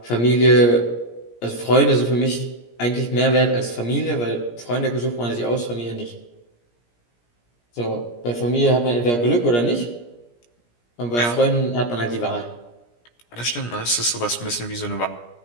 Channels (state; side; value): late; right; 17 ms